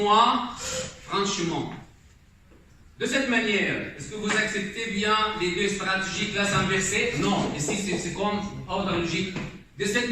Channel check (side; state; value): both; identical; correlation 1.00